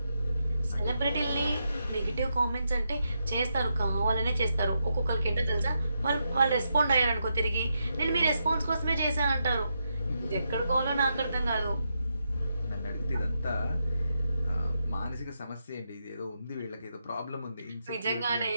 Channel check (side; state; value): both; inverted; correlation -0.83